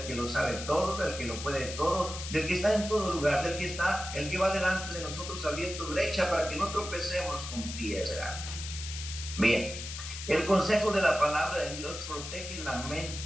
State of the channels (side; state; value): left; noise; hiss, 8 dB below the sound